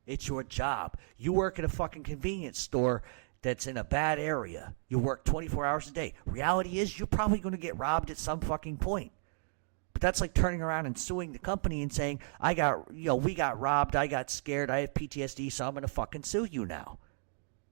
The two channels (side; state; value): left; silent; 55 dB below the other